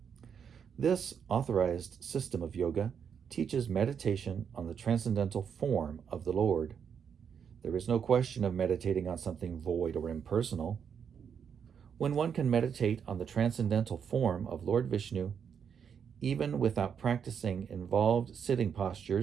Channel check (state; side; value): quieter; left; 7.4 dB